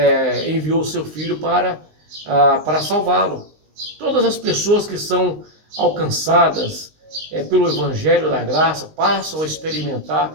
enviou o seu Filho para salvá-lo. Todas as pessoas que são alcançadas pelo Evangelho da Graça passam a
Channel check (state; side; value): late; left; 19 ms